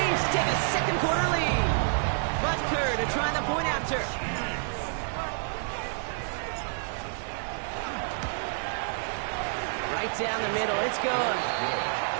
take a 2nd quarter lead. Butker to try the point after. Right down the middle, it's good.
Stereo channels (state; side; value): silent; left; digital silence